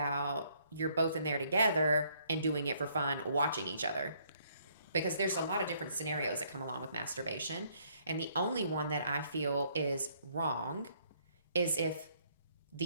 you're both in there together and doing it for fun, watching each other? Because there's a lot of different scenarios that come along with masturbation. And the only one that I feel is wrong is if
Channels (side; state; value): both; inverted; correlation -0.67